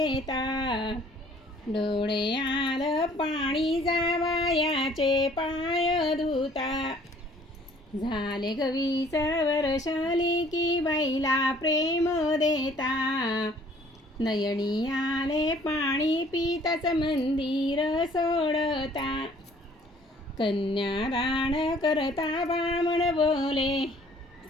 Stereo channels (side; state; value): both; normal; correlation 0.57